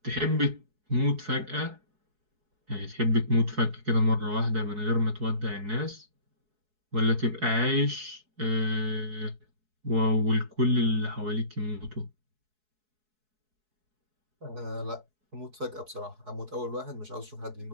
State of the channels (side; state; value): left; late; 4.7 ms